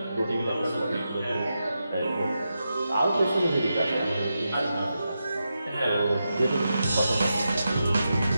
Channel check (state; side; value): inverted; both; correlation -0.88